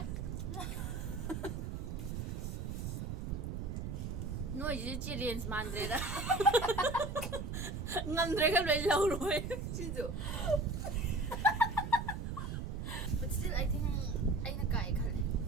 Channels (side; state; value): right; noise; rumble, 4 dB below the sound